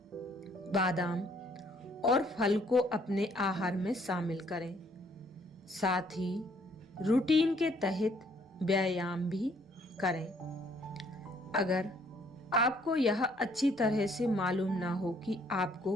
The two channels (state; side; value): normal; both; correlation 0.64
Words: बादाम और फल को अपने आहार में शामिल करें। साथ ही रूटीन के तहत व्यायाम भी करें। अगर आपको यह अच्छी तरह से मालूम ना हो कि आपको